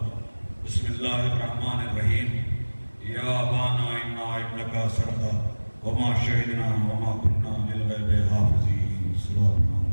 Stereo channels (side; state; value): both; inverted; correlation -1.00